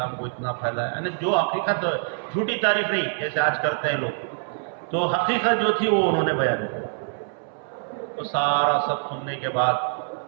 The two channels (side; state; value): left; silent; 62 dB below the other